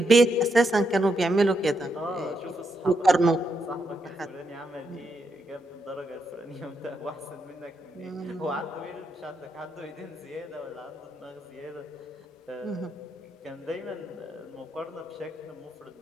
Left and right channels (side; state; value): both; normal; correlation 0.81